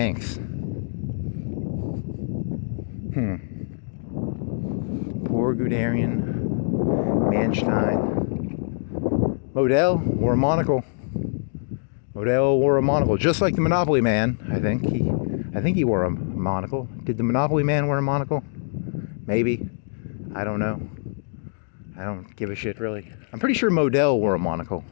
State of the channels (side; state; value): right; silent; digital silence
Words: Poor Guderian. Manstein. Model wore a monocle. Just like the Monopoly Man, I think. I think he wore a monocle. Did the Monopoly Man wear a monocle? Maybe. I don't know. I don't give a shit, really. I'm pretty sure Model wore a monocle.